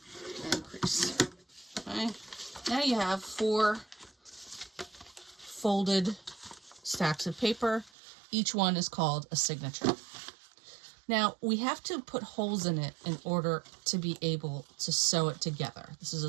and crease. Okay, now you have 4 folded stacks of paper. Each one is called a signature. Now, we have to put holes in it in order to be able to sew it together. This is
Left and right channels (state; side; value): drops out; left; at 7.9 s